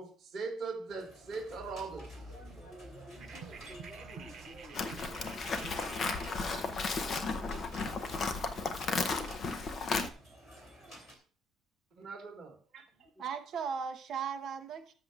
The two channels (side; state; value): both; normal; correlation 0.69